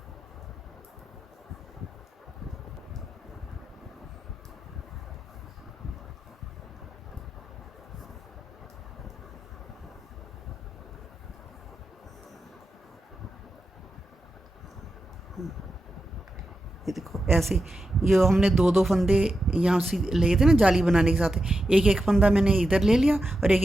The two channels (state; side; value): normal; both; correlation 0.89